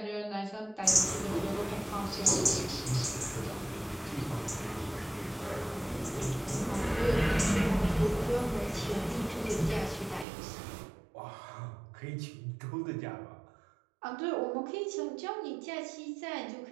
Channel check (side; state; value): left; drops out; at 10.2 s